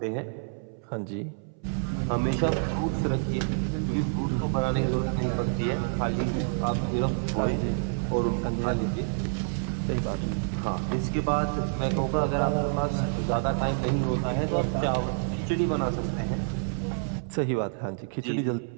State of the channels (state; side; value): silent; left; 59 dB below the other